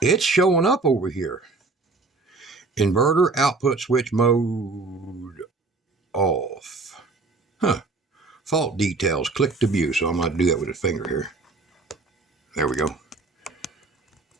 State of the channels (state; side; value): quieter; left; 3.8 dB